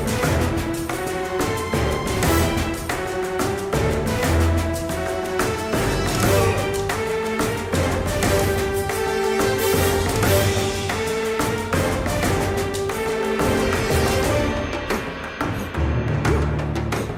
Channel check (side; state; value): both; identical; correlation 1.00